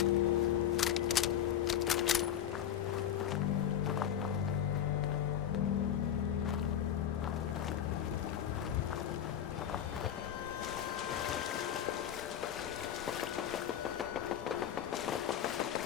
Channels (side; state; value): right; quieter; 10.0 dB